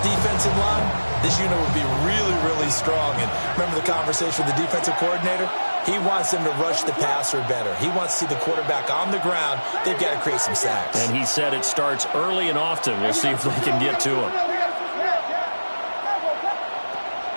in line, this unit would be really, really strong. And remember the conversation with the defensive coordinator? He wants them to rush the passer better. He wants to see the quarterback on the ground. They've got to create some sacks. And he said it starts early and often. We'll see if they can get to him.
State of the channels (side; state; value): both; inverted; correlation -1.00